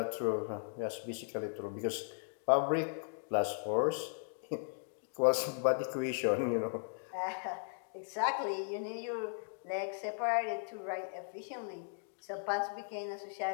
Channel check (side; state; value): right; silent; digital silence